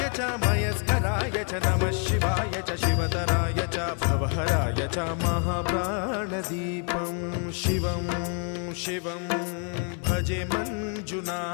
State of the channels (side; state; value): right; quieter; 39.7 dB